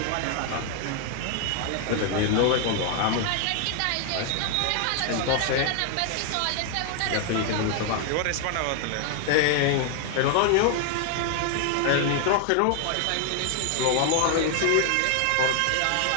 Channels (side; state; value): both; different; correlation 0.00